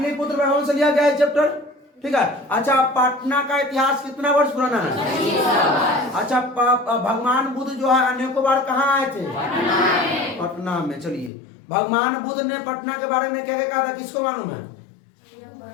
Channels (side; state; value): right; drops out; at 11.3 s